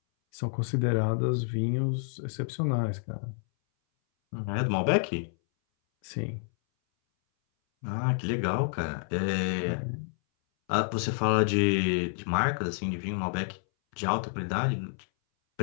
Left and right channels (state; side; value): silent; right; 58 dB below the other